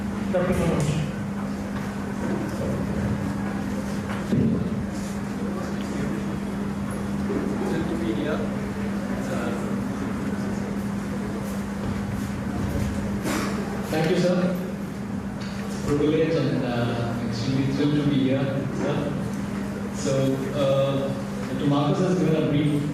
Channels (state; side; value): identical; both; correlation 1.00